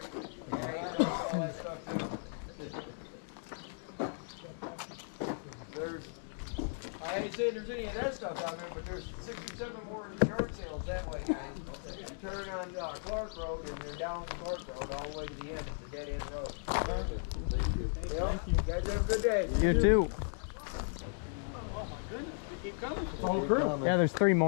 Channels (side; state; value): right; silent; digital silence